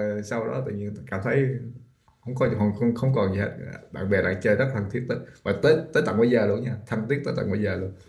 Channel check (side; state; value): both; identical; correlation 1.00